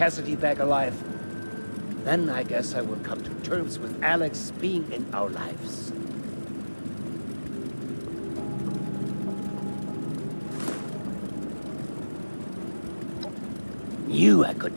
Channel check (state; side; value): inverted; both; correlation -1.00